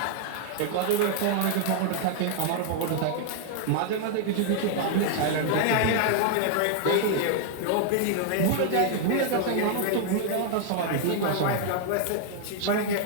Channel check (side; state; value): both; different; correlation 0.00